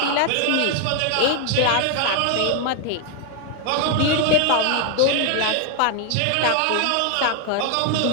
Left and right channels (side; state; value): both; different; correlation 0.00